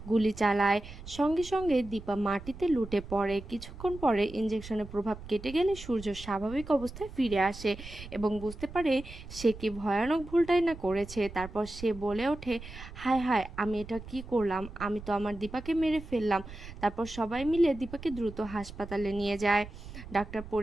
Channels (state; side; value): noise; right; rumble, 14 dB below the sound